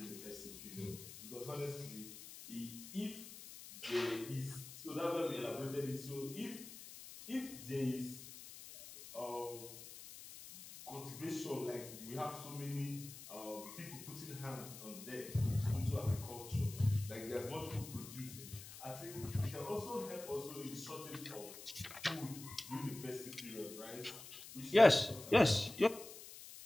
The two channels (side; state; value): left; noise; hiss, 13 dB below the sound